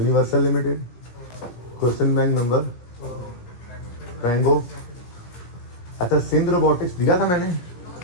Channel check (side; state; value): right; late; 17 ms